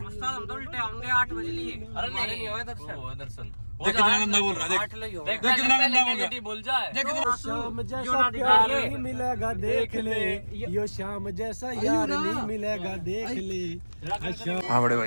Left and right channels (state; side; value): inverted; both; correlation -1.00